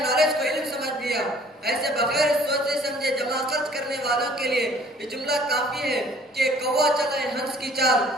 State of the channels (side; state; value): both; normal; correlation 0.55